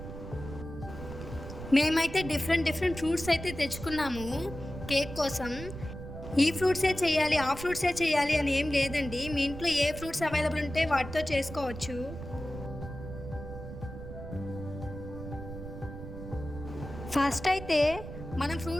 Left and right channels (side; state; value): right; noise; rumble, 10 dB below the sound